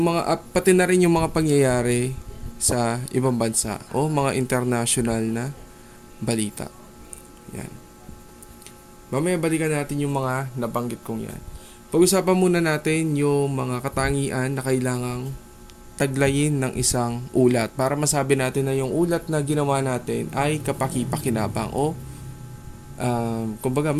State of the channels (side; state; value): both; identical; correlation 1.00